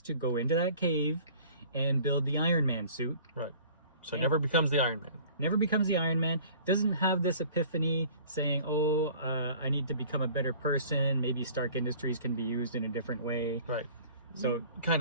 to go into that cave and build the Iron Man suit. Right. So never becomes the Iron Man. Never becomes the Iron Man. Doesn't have this epiphany saying, I need to become a better person. Maybe Stark Industries can be used in a different way. Right. So kind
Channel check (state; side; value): inverted; both; correlation -0.48